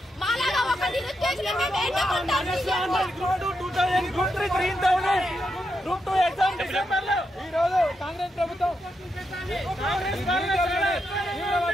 మాలాగా ఒక నిరుద్యోగులు మేము ఏంటంటాం. గ్రూప్ 2 ఎగ్జామ్ డిసెంబర్ లో ఈ రోజు కాంగ్రెస్ ప్రభుత్వం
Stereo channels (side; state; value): both; normal; correlation 0.84